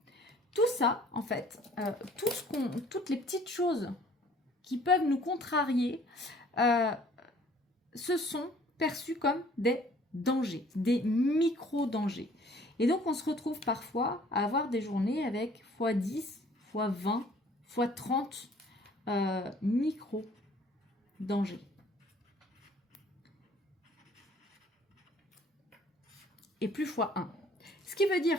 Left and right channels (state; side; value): normal; both; correlation 0.56